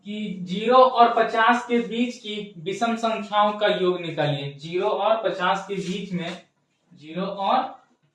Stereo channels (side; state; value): both; identical; correlation 1.00